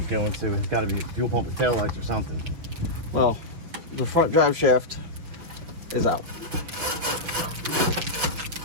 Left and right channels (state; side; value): late; left; 6.0 ms